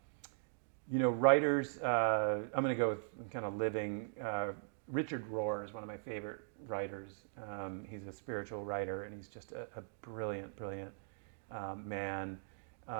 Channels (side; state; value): left; silent; digital silence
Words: You know, writers, I'm going to go with kind of living. Richard Rohr is one of my favorite writers. He's a spiritual writer, and he's just a brilliant man.